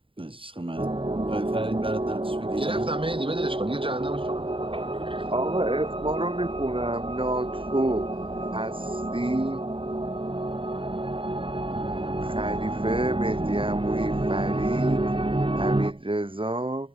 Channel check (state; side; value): late; left; 0.25 ms